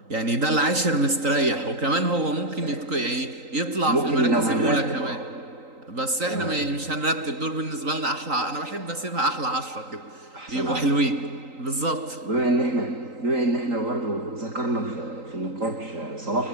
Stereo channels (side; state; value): left; late; 3.8 ms